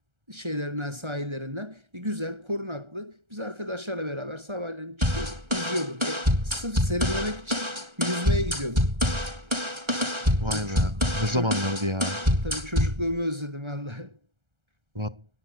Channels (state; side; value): late; left; 1.3 ms